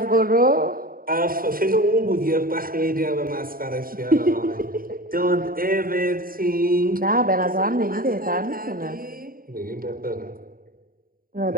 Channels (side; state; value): left; late; 0.41 ms